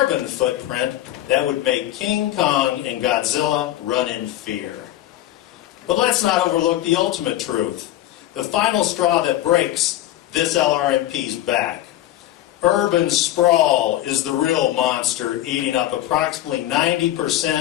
footprint that would make King Kong and Godzilla run in fear. But let's not overlook the ultimate truth, the final straw that breaks this LRMP's back. Urban sprawl is the real monster, eating up approximately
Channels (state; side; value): quieter; right; 14.0 dB